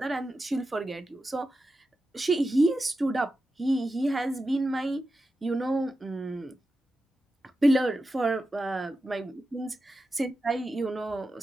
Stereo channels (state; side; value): normal; both; correlation 0.91